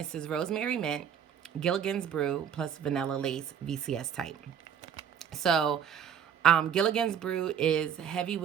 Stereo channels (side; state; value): left; quieter; 8.5 dB